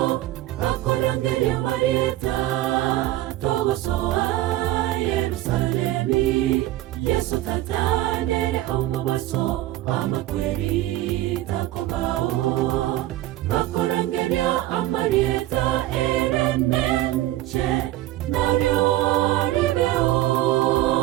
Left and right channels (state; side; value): quieter; left; 15.4 dB